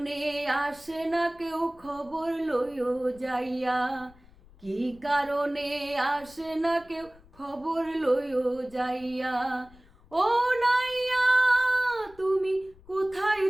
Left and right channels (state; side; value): noise; left; rumble, 25 dB below the sound